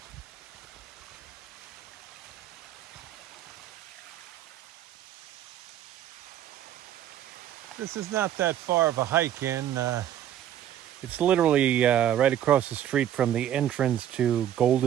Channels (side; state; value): left; quieter; 11.1 dB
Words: This is not that far of a hike in. It's literally right across the street from the entrance to